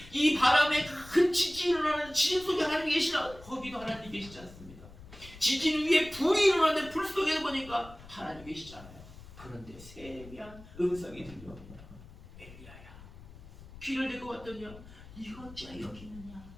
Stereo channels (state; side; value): noise; left; rumble, 18 dB below the sound